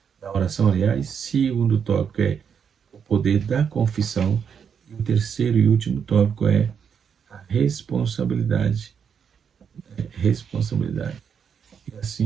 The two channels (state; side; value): quieter; left; 7.2 dB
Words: da oração, aliás. Segundo tópico é o poder da confissão. E o terceiro e último tópico é a responsabilidade. Responsabilidade. E